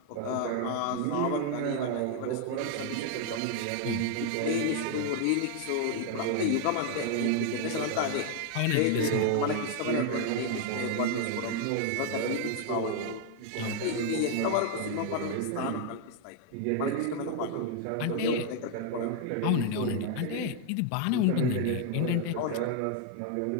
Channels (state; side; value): different; both; correlation 0.00